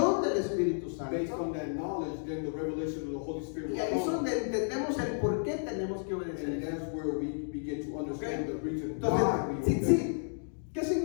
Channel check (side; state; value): right; silent; digital silence